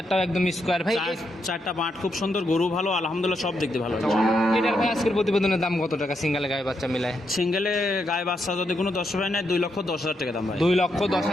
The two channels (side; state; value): both; normal; correlation 0.81